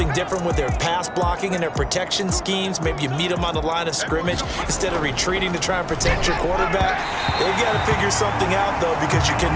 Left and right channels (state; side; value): identical; both; correlation 1.00